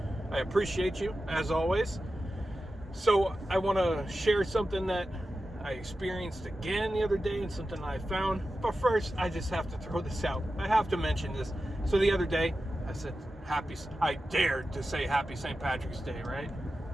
I appreciate you, as always. So I want to share something that I experienced again the other day and something I found. But first, I just have to throw this out. I have to mention this. So the other day, I said, I dared to say Happy St. Patrick's Day, right?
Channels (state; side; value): normal; both; correlation 0.92